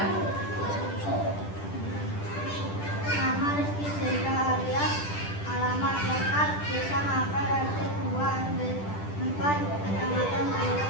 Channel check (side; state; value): right; late; 10 ms